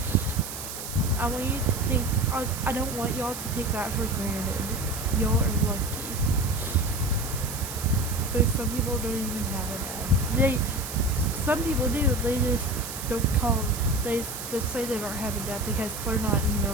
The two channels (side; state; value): right; noise; hiss, 8 dB below the sound